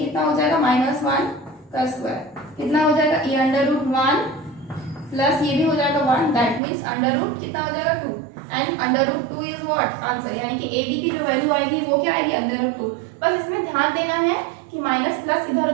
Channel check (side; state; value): left; drops out; at 6.6 s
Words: हो जाएगा, -1 का स्क्वायर, कितना हो जाएगा, ये √1 प्लस ये भी हो जाएगा 1, दैट मीन्स अंडर रूट कितना हो जाएगा 2, एंड √2 इज व्हाट, आंसर, यानी कि ए बी की जो वैल्यू आएगी वो क्या आएगी, √2। बस इसमें ध्यान देना है कि माइनस प्लस इधर